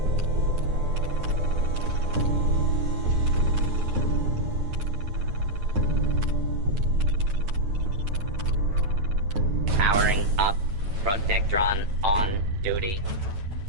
Powering up. Protectron on duty.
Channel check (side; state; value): left; late; 9.1 ms